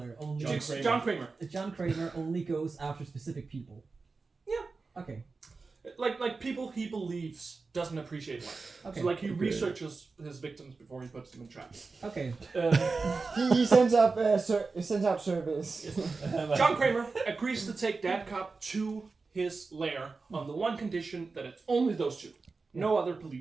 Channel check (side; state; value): left; quieter; 4.2 dB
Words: only John Kramer. John Kramer only goes after specific people. Yeah. Okay. Like people he believes doesn't appreciate life. Okay. So like he researches his victims before he puts them in traps. Okay. He sends out service. John Kramer agrees to take Dadcop to his lair on the one condition that it's only those two, no other